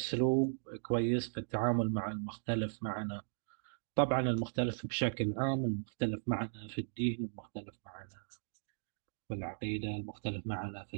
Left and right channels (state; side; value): silent; left; digital silence